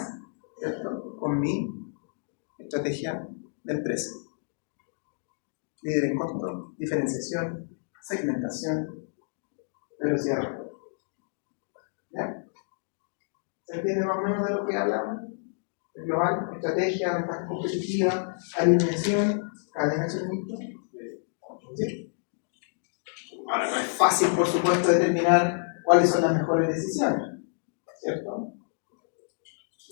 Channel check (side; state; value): right; silent; digital silence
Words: ¿cierto?, con mi estrategia de empresa. Líder en costo, diferenciación, segmentación, velocidad de respuesta. ¿Ya? ¿Se entiende más o menos de lo que hablamos? El global, estrategia, ventaja competitiva, alineación, cadena de suministro. ¿Sí? Ahora, no es fácil, por supuesto, determinar cuáles son las mejores decisiones, ¿cierto?